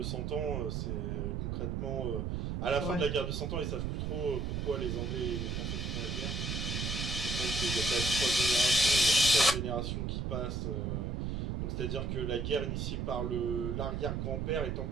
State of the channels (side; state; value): right; noise; rumble, 1 dB below the sound